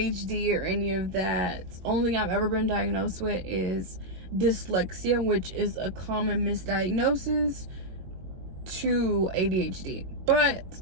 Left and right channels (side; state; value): left; late; 21 ms